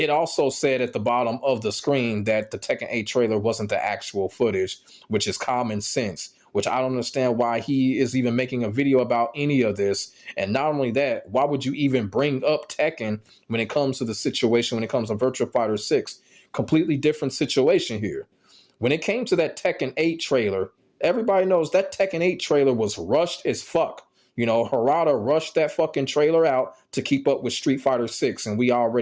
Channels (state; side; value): identical; both; correlation 1.00